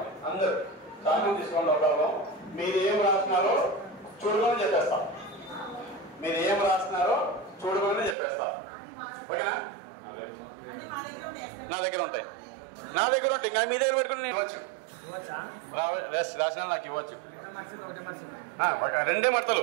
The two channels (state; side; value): drops out; left; at 8.2 s